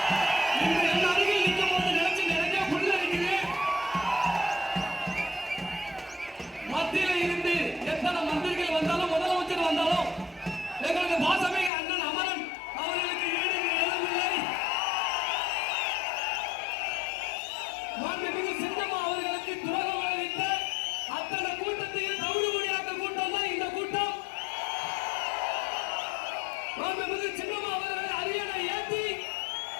இன்று என் அருகில் நிற்கும் போது நினைச்சு நிறைய புல் அடிக்கிறேன். மத்தியில இருந்து எத்தனை மந்திரிகள் வந்தாலும் முதலமைச்சர் வந்தாலும் எங்களுக்கு பாசமிகு அண்ணன் அமரன் அவர்களுக்கு ஈடு இணையில்லை. மாண்புமிகு சின்னம்மா அவர்களுக்கு துரோகம் விளைவித்த அத்தனை கூட்டத்தையும் தவிடுபடியாக்க கூட்டம் தான் இந்த கூட்டம். மாண்புமிகு சின்னம்மா அவர்களை அரியணை ஏற்றி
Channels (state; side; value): drops out; right; at 11.7 s